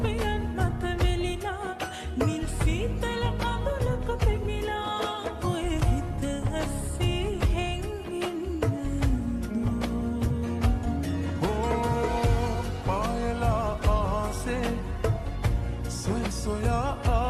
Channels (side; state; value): both; identical; correlation 1.00